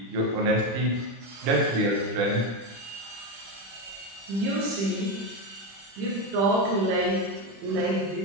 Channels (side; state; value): left; late; 25 ms